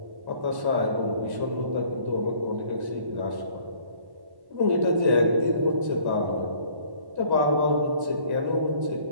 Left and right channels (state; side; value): late; left; 1.1 ms